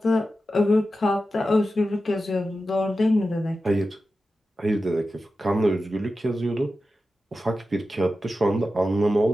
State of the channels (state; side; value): normal; both; correlation 0.92